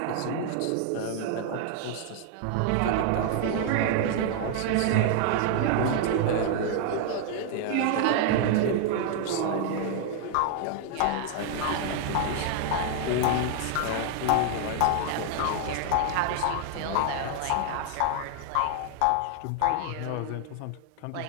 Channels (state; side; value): different; both; correlation 0.00